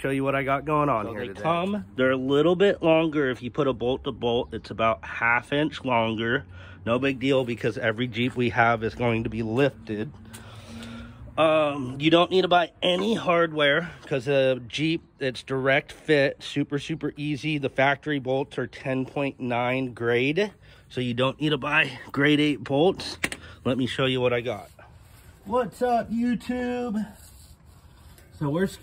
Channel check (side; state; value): both; identical; correlation 1.00